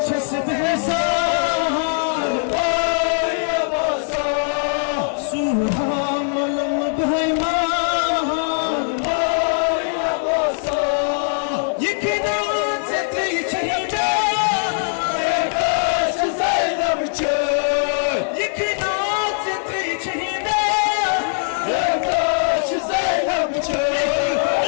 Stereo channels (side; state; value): right; silent; 65 dB below the other